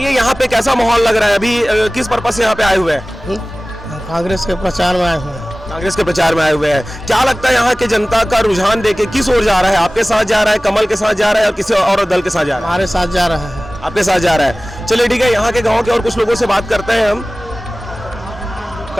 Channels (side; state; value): both; normal; correlation 0.98